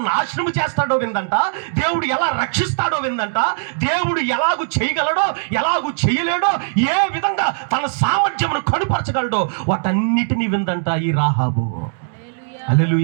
నాశనం చేస్తాడో విందంట. దేవుడు ఎలా రక్షిస్తాడో విందంట. దేవుడు ఎలాగూ చేయగలడో ఎలాగూ చేయలేడో, ఏ విధంగా తన సామర్థ్యమును కనుపరచగలడో వాటన్నిటినీ విందంట ఈ రాహాబు.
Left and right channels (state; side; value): silent; left; digital silence